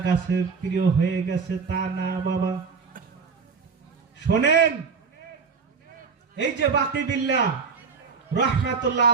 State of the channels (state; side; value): quieter; left; 5.4 dB